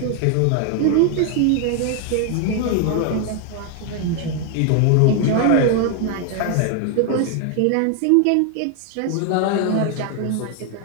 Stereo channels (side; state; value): both; different; correlation 0.00